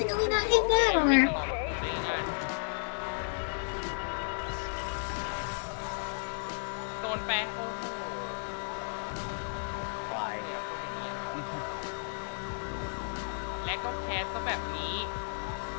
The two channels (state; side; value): silent; right; 56 dB below the other